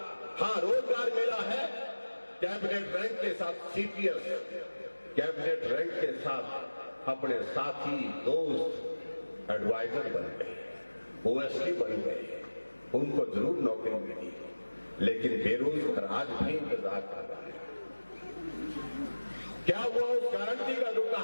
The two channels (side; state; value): both; inverted; correlation -1.00